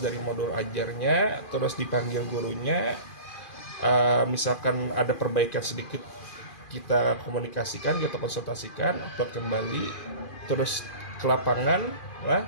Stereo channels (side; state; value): right; late; 2.4 ms